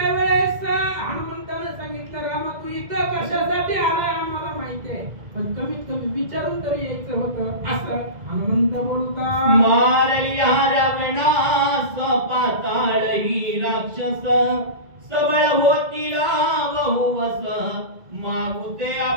हनुमंताने सांगितलं रामा, तू इथं कशासाठी आलाय आम्हाला माहिती आहे, पण कमीत कमी विचारून तरी यायचं होतं. असं हनुमंत बोलता. मारल्या रावणास पाताळ ही राक्षस, सबळ होतीला बहुवस, मागुते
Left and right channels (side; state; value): left; late; 2.0 ms